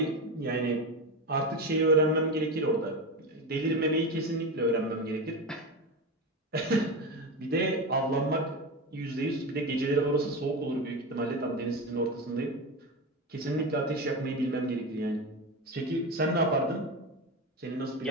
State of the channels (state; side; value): normal; both; correlation 0.20